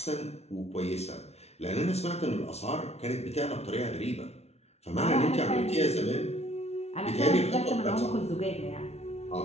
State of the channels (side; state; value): right; late; 0.31 ms